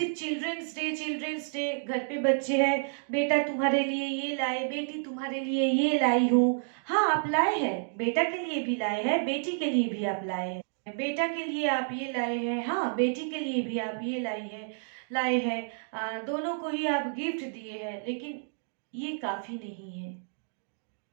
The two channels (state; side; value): silent; left; digital silence